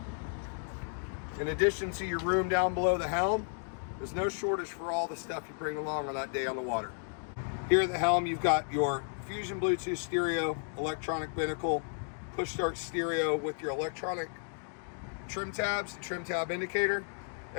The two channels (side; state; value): right; silent; 56 dB below the other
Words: In addition to your room down below the helm, there's no shortage for all the stuff you bring along on that day on the water. Here at the helm, you've got your Fusion Bluetooth stereo, electronic binnacle, push start stereo with your electronic trim tabs, trim tab indicator.